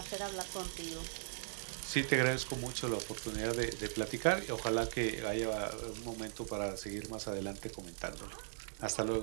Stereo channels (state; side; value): silent; left; digital silence